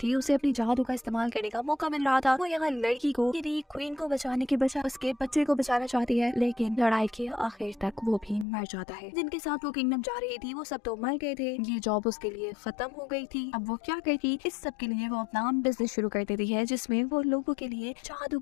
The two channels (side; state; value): right; drops out; at 8.5 s